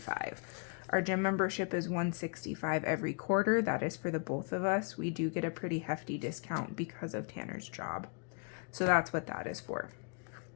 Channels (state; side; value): quieter; right; 39.1 dB